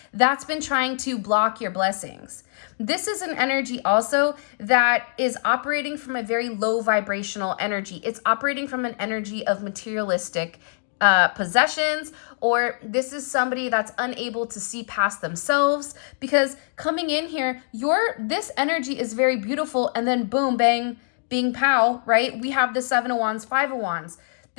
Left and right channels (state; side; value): silent; right; digital silence